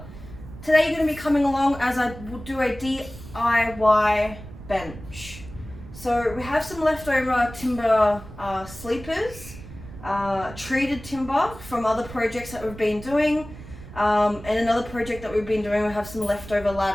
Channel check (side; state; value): right; noise; rumble, 15 dB below the sound